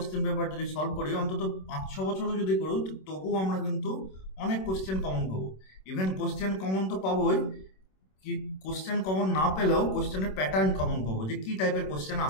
পেপার যদি সলভ করি, অন্তত 5-6 বছরও যদি করি, তবুও আমরা কিন্তু অনেক কোশ্চেন কমন পাবো। ইভেন কোশ্চেন কমন তো পাবোই, কি কোশ্চেন কমন না পেলেও কোশ্চেনের প্যাটার্ন কমন পাবো, যে কি টাইপের কোশ্চেন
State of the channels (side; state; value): right; late; 26 ms